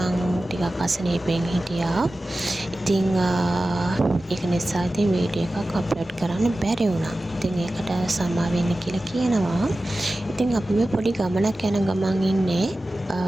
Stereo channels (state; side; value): normal; both; correlation 0.95